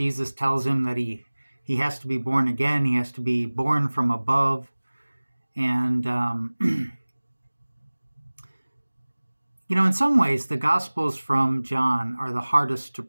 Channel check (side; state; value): both; inverted; correlation -1.00